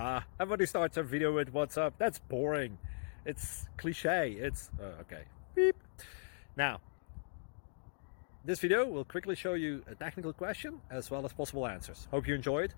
Everybody starts a video with what's up. That's boring. It's cliche. It's okay. Beep. Now, this video will quickly show you a technical question as well as possible answers. Hope you enjoyed.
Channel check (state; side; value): silent; right; digital silence